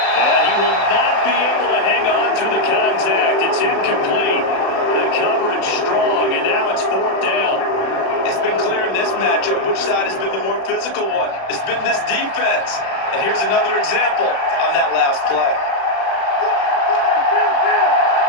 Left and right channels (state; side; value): late; right; 36 ms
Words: And he will not be able to hang on through the contact. It's incomplete. The coverage strong, and now it's 4th down. It's been clear in this matchup which side has been the more physical one. It's been this defense. And here's another example on that last play.